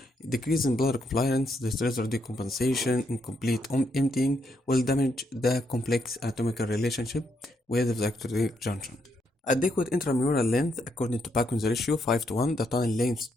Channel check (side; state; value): both; normal; correlation 0.77